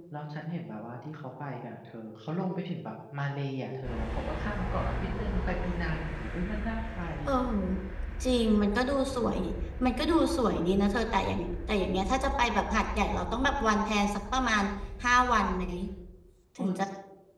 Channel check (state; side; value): identical; both; correlation 1.00